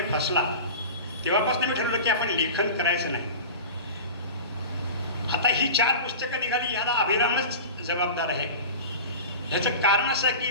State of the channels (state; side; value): inverted; both; correlation -0.32